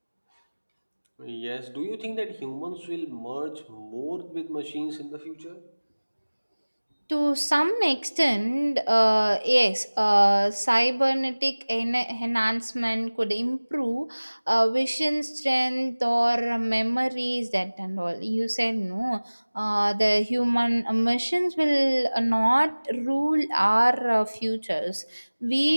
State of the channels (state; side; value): inverted; both; correlation -1.00